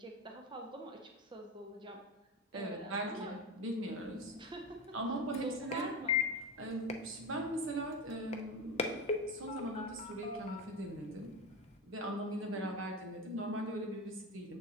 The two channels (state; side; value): normal; both; correlation 0.22